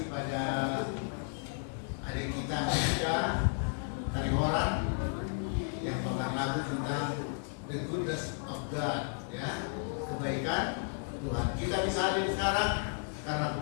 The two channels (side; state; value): right; silent; 55 dB below the other